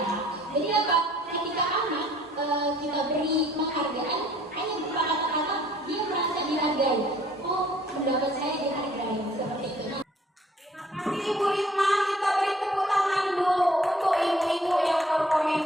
Jadi apa? Ketika anak kita beri penghargaan, hanya berupa kata-kata, dia merasa dihargai. Oh, pendapat saya dihargai, seperti itu. Terima kasih Ibu Risma, kita beri tepuk tangan dulu untuk ibu-ibu yang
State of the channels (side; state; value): both; normal; correlation 0.59